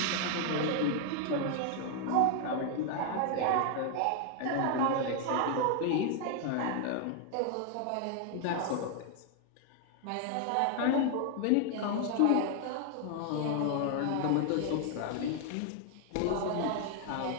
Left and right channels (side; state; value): both; different; correlation 0.00